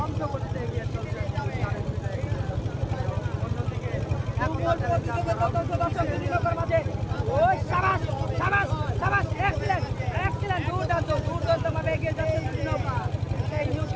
করতে এগিয়ে চলছে। অন্যদিকে একতা চ্যালেঞ্জার মাঝে ওই সাবাস সাবাস সাবাস এক্সিলেন্ট এক্সিলেন্ট দুর্দান্ত ভাবে এগিয়ে যাচ্ছে দুই নৌকা। সেই নিউ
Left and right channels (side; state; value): both; identical; correlation 1.00